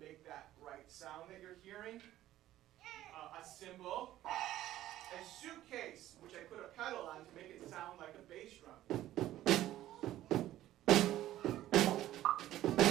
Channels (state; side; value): quieter; left; 13.9 dB